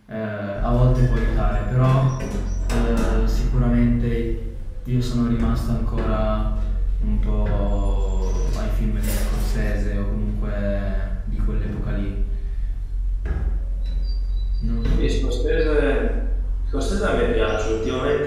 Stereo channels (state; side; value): identical; both; correlation 1.00